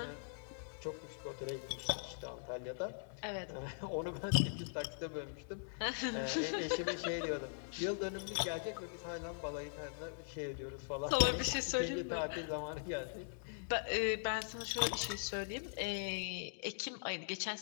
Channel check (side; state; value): right; silent; digital silence